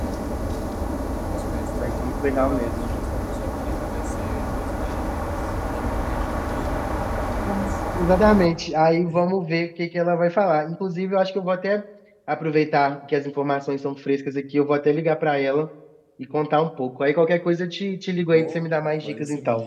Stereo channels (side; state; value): both; identical; correlation 1.00